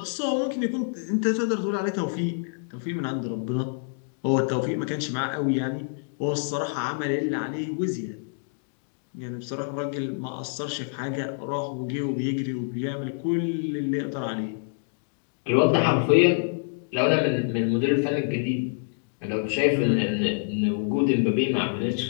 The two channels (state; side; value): silent; right; digital silence